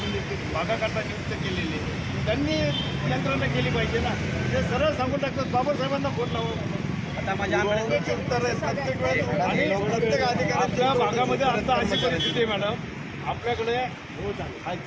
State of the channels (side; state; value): both; identical; correlation 1.00